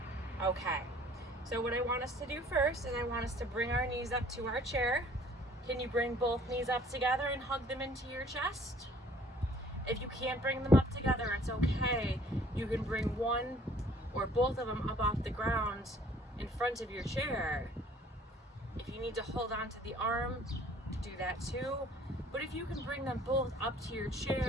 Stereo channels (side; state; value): both; normal; correlation 0.56